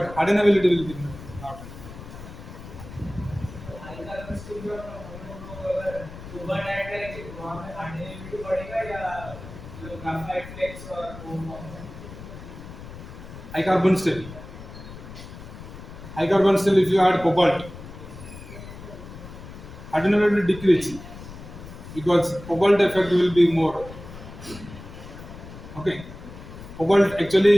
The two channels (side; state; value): left; noise; rumble, 14 dB below the sound